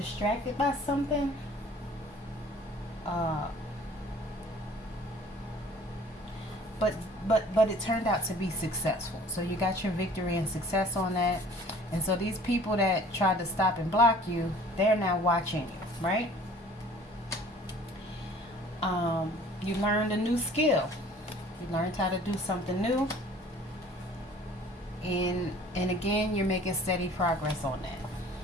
by something, uh, but but it turned out to be successful. So you got your victory and success on that. And so these people that tried to stop and block you, they're now watching you, right? You learned a new skill. You learned how to do something new. And again, you're making steady progress on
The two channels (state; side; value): normal; both; correlation 0.50